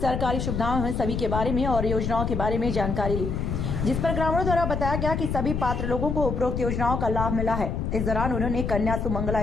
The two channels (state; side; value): noise; left; rumble, 2 dB below the sound